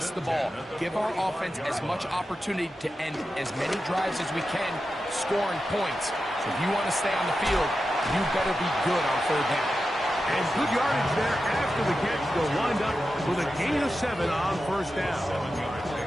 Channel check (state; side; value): normal; both; correlation 0.91